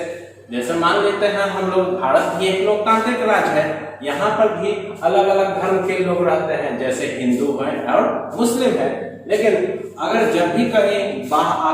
जैसे मान लेते हैं हम लोग भारत भी एक लोकतांत्रिक राज्य है, यहाँ पर भी अलग अलग धर्म के लोग रहते हैं, जैसे हिंदू हैं और मुस्लिम हैं। लेकिन अगर जब भी कहीं बाह्य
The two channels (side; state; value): both; identical; correlation 1.00